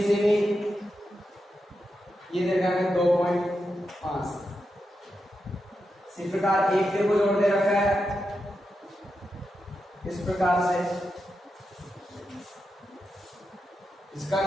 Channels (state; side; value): normal; both; correlation 0.87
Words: सेमी, ये देगा 2.5। इसी प्रकार एक को जोड़ दे रखा है इस प्रकार से, इसका